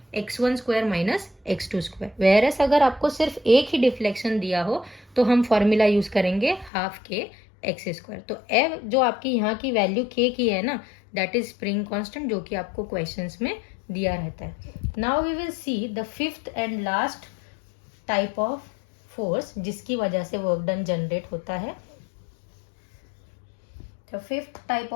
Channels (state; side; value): drops out; right; at 6.7 s